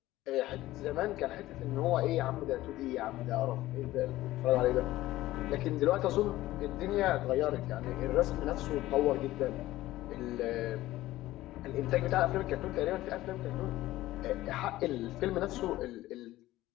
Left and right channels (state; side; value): quieter; right; 16.2 dB